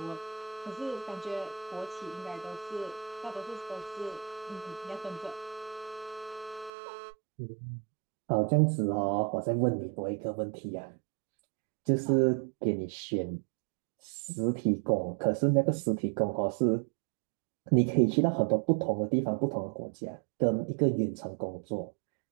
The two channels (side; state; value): left; drops out; at 6.7 s